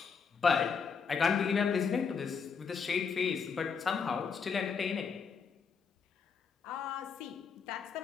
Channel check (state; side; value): quieter; right; 5.9 dB